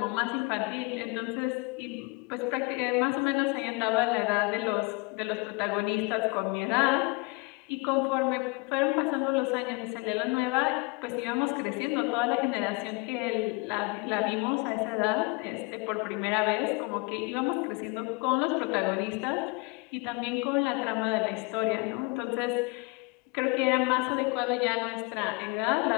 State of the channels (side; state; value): right; quieter; 27.7 dB